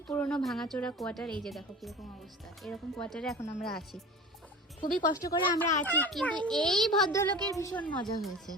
পুরনো ভাঙাচোরা কোয়ার্টার। এই যে দেখো কীরকম অবস্থা, এরকম কোয়ার্টারে এখন আমরা আছি। খুবই কষ্ট করে আমরা আছি, কিন্তু এই ভদ্রলোকের ভীষণ মজা হয়েছে,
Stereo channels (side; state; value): both; normal; correlation 0.37